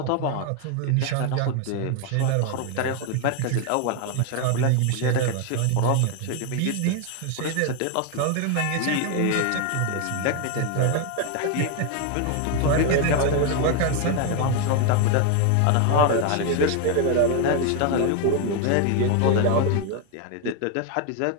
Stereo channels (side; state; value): both; different; correlation 0.01